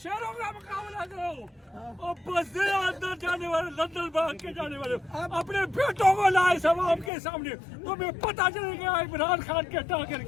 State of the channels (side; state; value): right; drops out; at 7.1 s